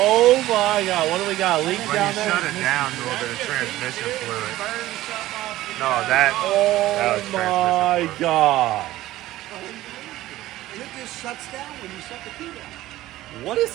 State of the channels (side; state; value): left; quieter; 15.8 dB